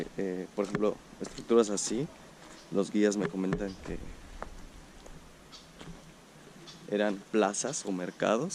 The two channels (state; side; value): identical; both; correlation 1.00